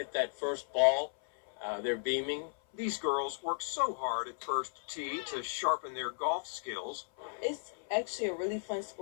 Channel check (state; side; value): silent; right; 54 dB below the other